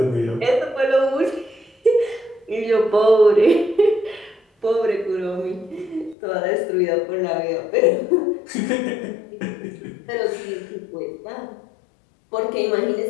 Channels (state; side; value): drops out; right; at 6.2 s